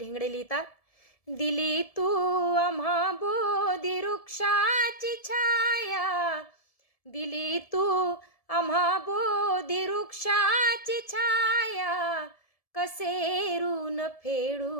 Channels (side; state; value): right; late; 1.7 ms